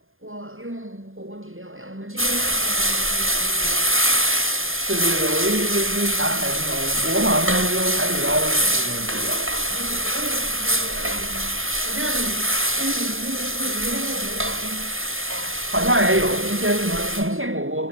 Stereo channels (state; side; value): late; left; 0.59 ms